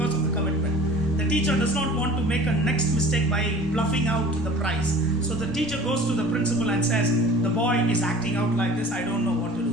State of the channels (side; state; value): both; normal; correlation 0.43